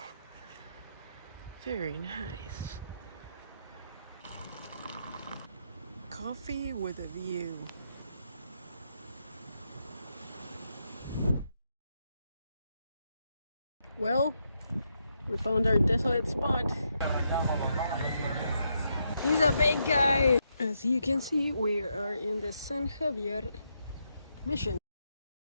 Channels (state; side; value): inverted; both; correlation -0.81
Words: Very nice. Coffee with a view. Well, We found our desolate spot. He's a big guy. As you can see, we are in the San Javier Mission.